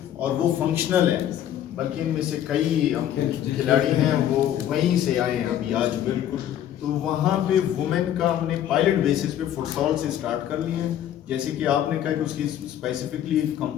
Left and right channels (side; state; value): right; quieter; 11.0 dB